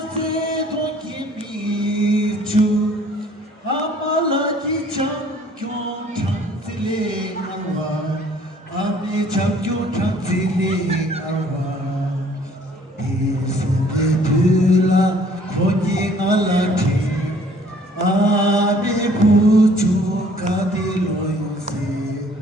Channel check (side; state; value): both; normal; correlation 0.57